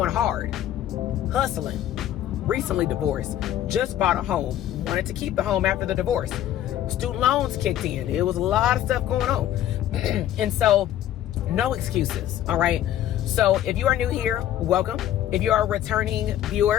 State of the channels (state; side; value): quieter; right; 12.0 dB